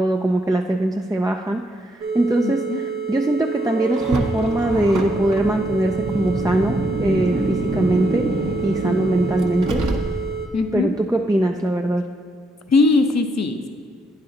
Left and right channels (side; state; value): both; normal; correlation 0.75